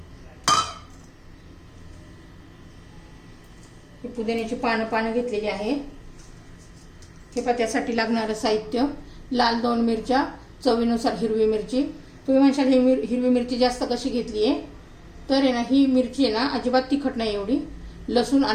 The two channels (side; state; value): both; identical; correlation 1.00